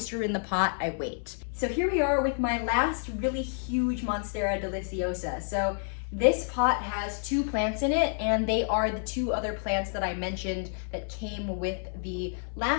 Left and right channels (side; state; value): right; silent; 58 dB below the other